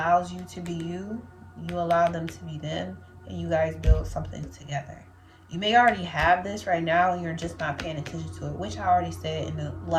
you to be you. You allow them to be them, and you guys build something together. You may already have this right now and you're just not paying attention to it, which I already said in the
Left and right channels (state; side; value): identical; both; correlation 1.00